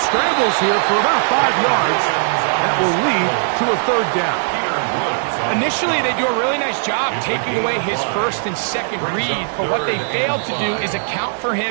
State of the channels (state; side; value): silent; left; 63 dB below the other